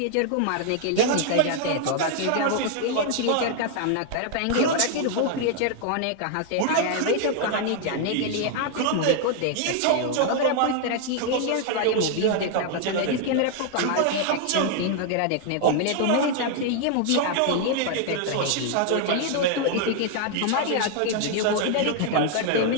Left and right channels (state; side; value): different; both; correlation 0.00